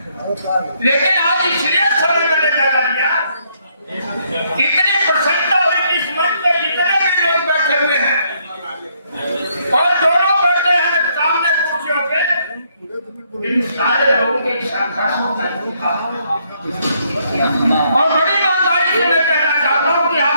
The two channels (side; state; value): both; inverted; correlation -0.71